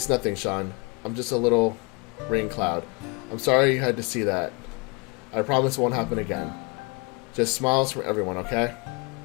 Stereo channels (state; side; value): quieter; right; 29.1 dB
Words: nothing, Sean. I'm just a little rain cloud. I'm sorry you had to see that. I promise it won't happen again. Just smiles from everyone, okay?